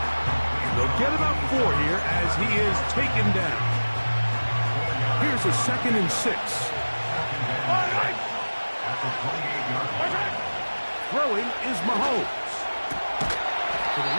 They'll get about 4 here as he is taken down. Here's a 2nd and 6. Throwing is Mahomes. To the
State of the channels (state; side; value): inverted; both; correlation -1.00